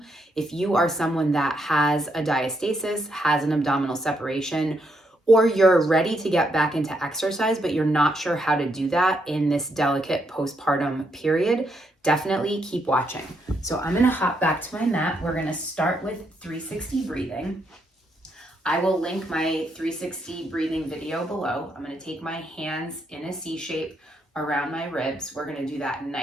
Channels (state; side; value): normal; both; correlation 0.77